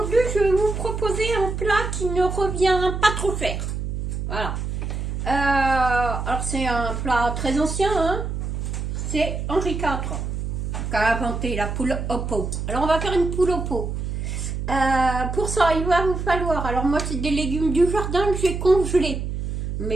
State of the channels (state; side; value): noise; right; hum, 4 dB below the sound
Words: je vais vous proposer un plat qui ne revient pas trop cher. Voilà. Alors, c'est un plat très ancien, hein. C'est Henri IV qui a inventé la poule au pot. Alors, on va faire une poule au pot. Pour ça, il va vous falloir... Alors, moi, c'est des légumes du jardin que j'ai congelés.